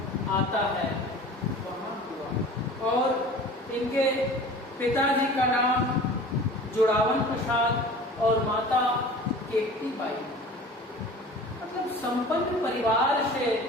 आता है, वहाँ हुआ। और इनके पिताजी का नाम जुड़ावन प्रसाद और माता केकती बाई। मतलब संपन्न परिवार से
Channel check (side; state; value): both; normal; correlation 0.41